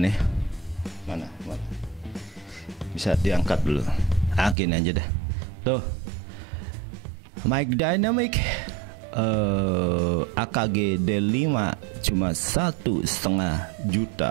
Mana? Bisa diangkat dulu. Akin aja dah. Tuh. Mic Dynamic AKG D5 cuma 1,5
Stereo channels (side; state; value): left; drops out; at 4.5 s